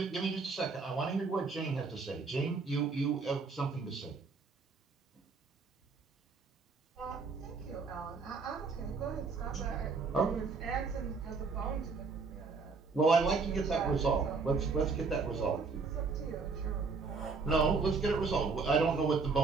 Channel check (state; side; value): quieter; left; 4.6 dB